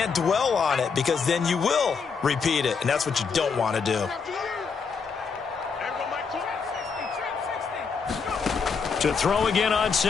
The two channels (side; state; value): right; quieter; 5.6 dB